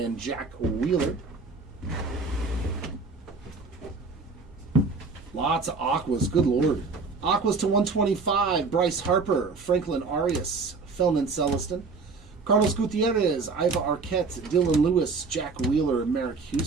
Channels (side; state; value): left; quieter; 4.3 dB